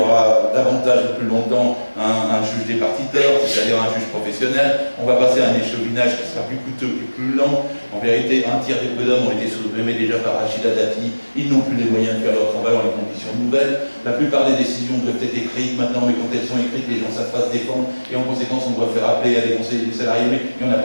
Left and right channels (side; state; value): both; inverted; correlation -1.00